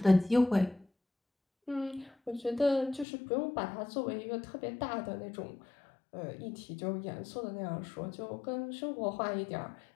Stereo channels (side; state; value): right; drops out; at 3.1 s